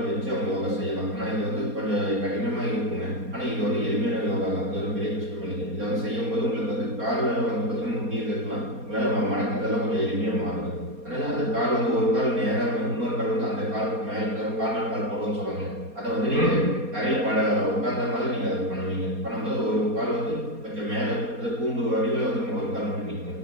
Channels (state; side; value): late; left; 4.2 ms